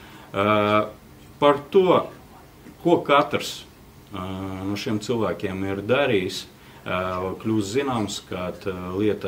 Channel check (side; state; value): both; identical; correlation 1.00